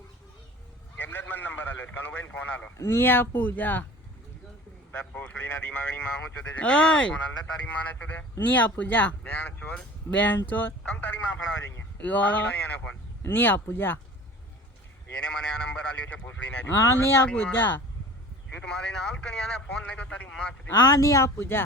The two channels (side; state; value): both; normal; correlation 0.42